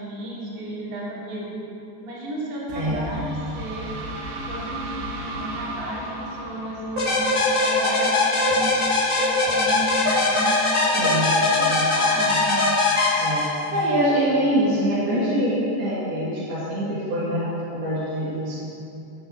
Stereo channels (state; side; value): late; left; 14 ms